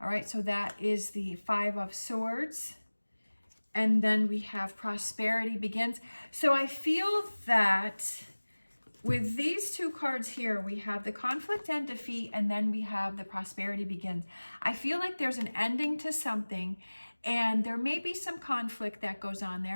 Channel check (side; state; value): both; inverted; correlation -1.00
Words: right, so that is the Five of Swords. And then we have prosperity begins. So I feel that with these two cards here, we have the conflict and defeat, and then we have the prosperity begins. I feel like there's an ending to something, and there may be some conflict that goes on